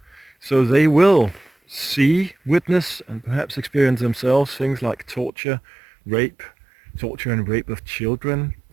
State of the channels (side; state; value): left; drops out; at 5.3 s